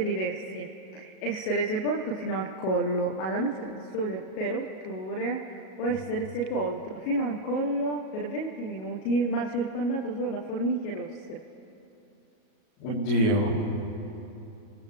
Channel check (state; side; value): late; right; 37 ms